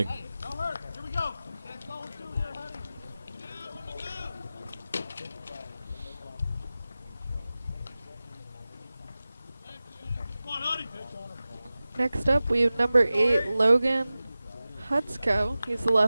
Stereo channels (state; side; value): inverted; both; correlation -0.96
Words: Next up, we have number 8, Logan Hutsko. He's the